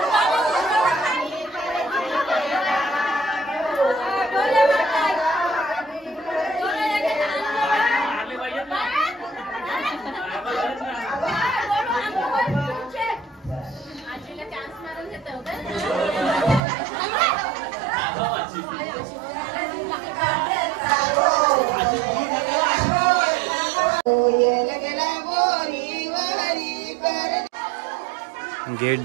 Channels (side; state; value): left; drops out; at 16.6 s